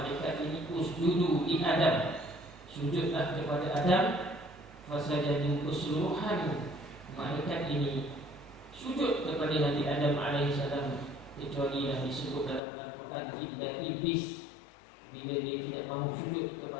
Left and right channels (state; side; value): drops out; right; at 12.6 s